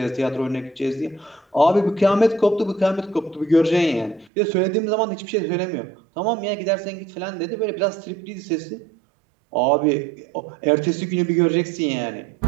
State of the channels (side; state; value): left; drops out; at 4.3 s